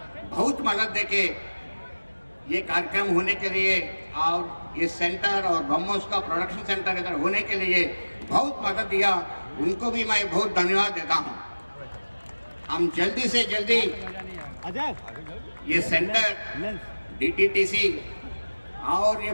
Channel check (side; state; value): both; inverted; correlation -1.00